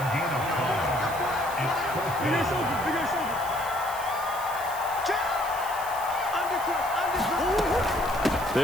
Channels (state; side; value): noise; right; hiss, 13 dB below the sound